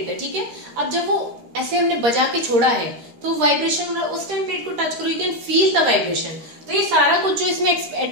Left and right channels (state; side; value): late; left; 13 ms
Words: है. ठीक है, अब जब वो ऐसे हमने बजा के छोड़ा है तो वाइब्रेशन हो रहा है, उस टाइम प्लेट को टच करो, you can feel the vibration. तो ये सारा कुछ जो इसमें